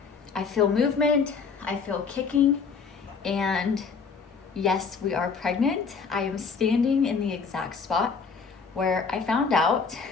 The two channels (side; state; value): right; quieter; 5.4 dB